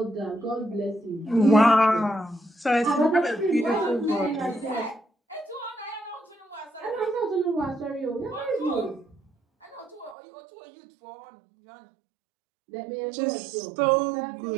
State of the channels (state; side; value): drops out; left; at 10.2 s